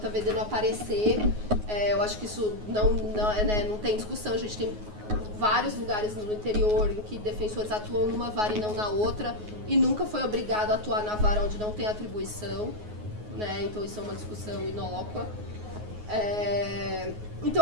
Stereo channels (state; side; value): late; left; 9.5 ms